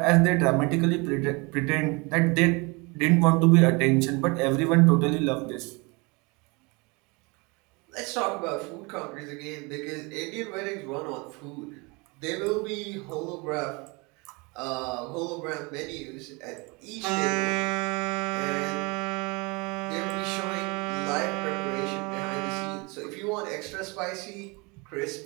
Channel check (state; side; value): quieter; left; 28.0 dB